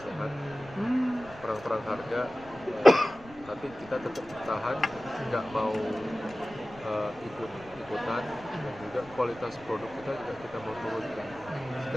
sehat, perang-perang harga, tapi kita tetap bertahan, nggak mau ikut-ikutan, dan juga kualitas produk kita juga kita mau turunkan.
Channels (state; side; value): noise; left; rumble, 21 dB below the sound